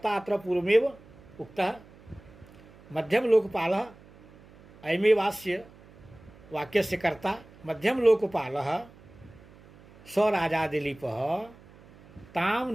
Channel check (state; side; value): noise; right; hum, 23 dB below the sound